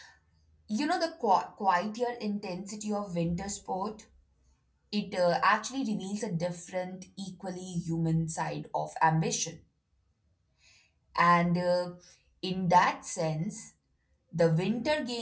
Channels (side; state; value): both; identical; correlation 1.00